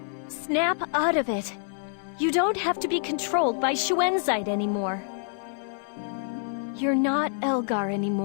Snap out of it. You don't have to be controlled by Shuenzite anymore. You're not Elgar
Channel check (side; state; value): right; silent; 60 dB below the other